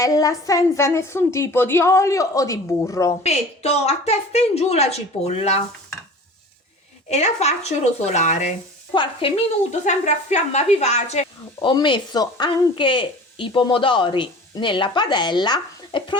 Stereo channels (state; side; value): normal; both; correlation 0.40